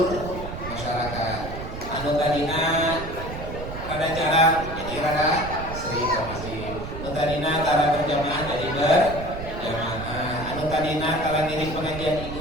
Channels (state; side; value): noise; right; rumble, 9 dB below the sound